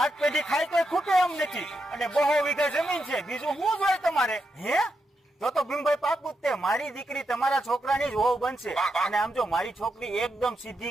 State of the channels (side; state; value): both; normal; correlation 0.85